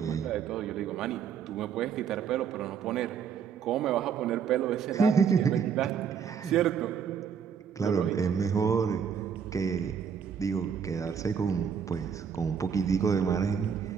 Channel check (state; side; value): quieter; left; 7.1 dB